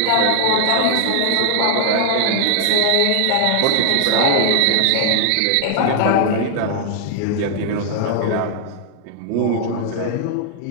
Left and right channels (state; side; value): different; both; correlation 0.00